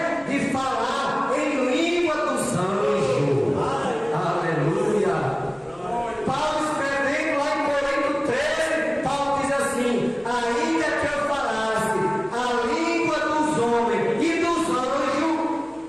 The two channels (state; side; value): noise; left; hum, 29 dB below the sound